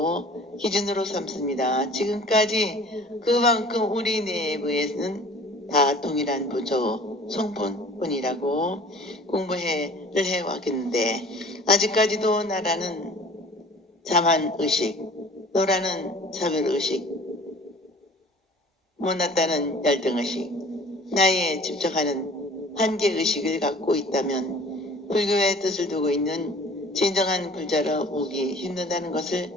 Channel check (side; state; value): both; normal; correlation 0.47